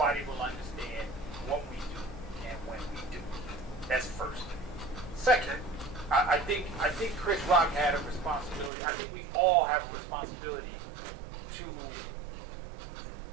will understand what we do and when we do. That's first. Second, I think Chris Rock had a responsibility. I think we all have a responsibility to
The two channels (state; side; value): drops out; left; at 8.7 s